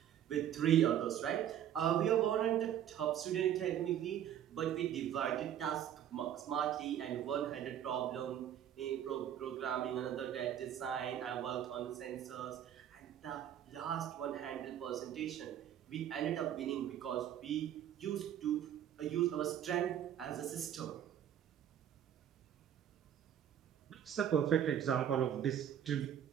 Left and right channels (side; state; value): left; quieter; 10.3 dB